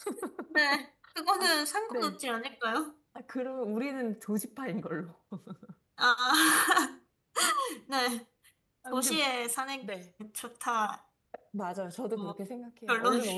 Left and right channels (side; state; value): both; identical; correlation 1.00